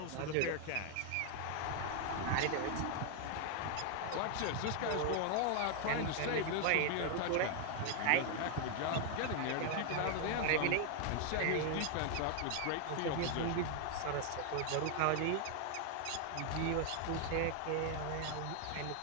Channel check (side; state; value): both; different; correlation 0.00